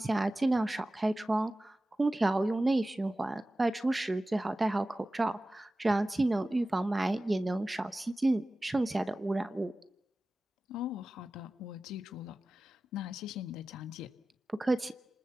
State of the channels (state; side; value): normal; both; correlation 0.96